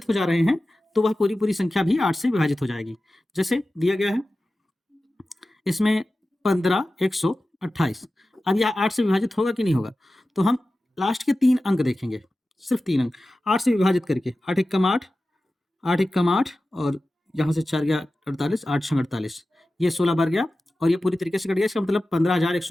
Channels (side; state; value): both; normal; correlation 0.95